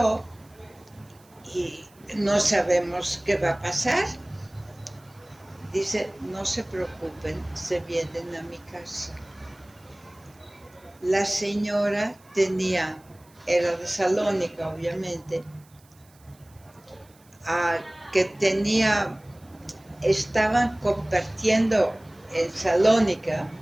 y no sabemos qué va a pasar. Dice, no se preocupen, se vienen a mi casa. La señora era de Salónica, obviamente, que estaban compartiendo en Salónica,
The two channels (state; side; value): noise; right; hiss, 30 dB below the sound